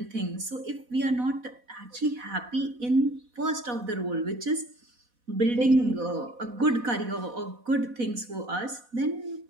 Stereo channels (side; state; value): left; late; 4.1 ms